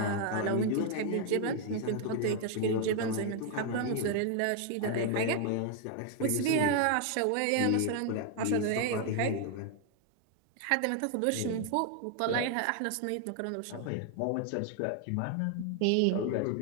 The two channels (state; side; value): different; both; correlation 0.00